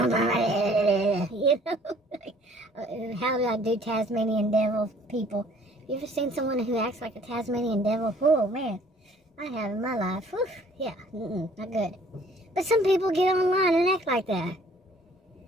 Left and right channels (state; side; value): normal; both; correlation 0.56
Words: how do I do Tasmanian devil people? Have you ever seen someone who acts like a Tasmanian devil? Oh, man, I have in my life. Whew, yeah, not good. But some people get online and act like that.